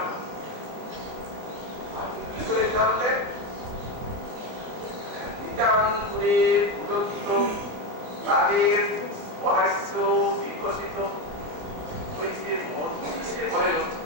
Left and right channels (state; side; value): late; left; 24 ms